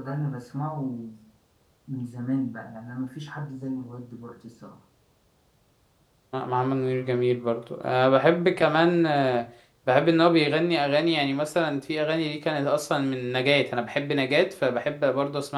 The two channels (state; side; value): identical; both; correlation 1.00